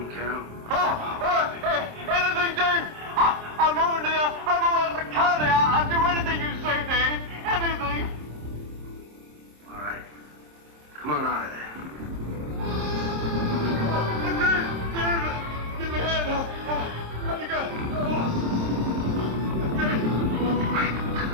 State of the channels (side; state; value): left; late; 26 ms